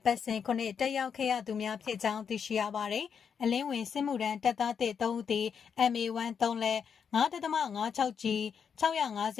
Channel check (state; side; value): quieter; right; 6.9 dB